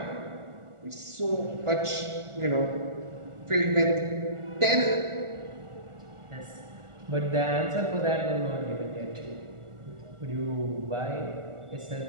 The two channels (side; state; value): left; late; 1.4 ms